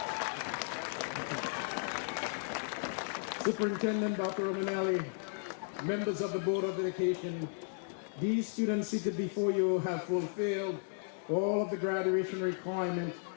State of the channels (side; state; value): right; silent; digital silence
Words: Superintendent Dr. Romanelli, members of the Board of Education, these students seated before you have fulfilled all of the graduation requirements